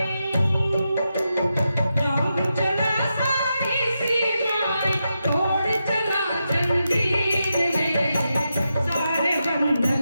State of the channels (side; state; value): both; inverted; correlation -0.87